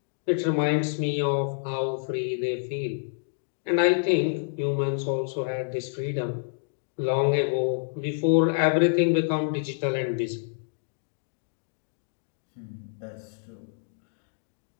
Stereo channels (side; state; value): right; silent; digital silence